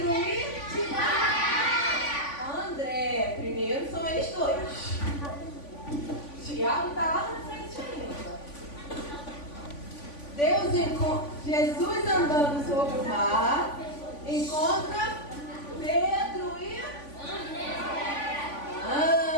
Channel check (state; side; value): late; right; 3.5 ms